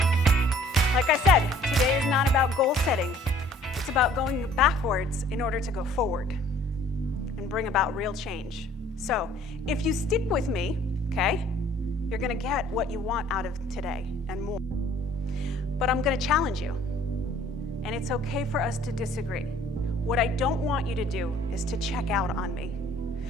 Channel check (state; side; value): normal; both; correlation 0.55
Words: Like I said, today is not about goal setting. It's about going backwards in order to go forward and bring about real change. So, if you stick with me, okay, you're going to get what you want out of today and more. But I'm going to challenge you. And it's okay for us to disagree. What I don't want you to do is to check out on me.